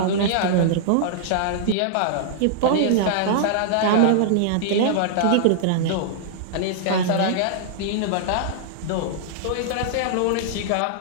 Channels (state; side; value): different; both; correlation -0.01